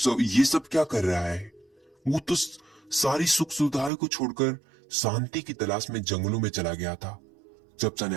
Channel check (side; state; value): left; drops out; at 3.9 s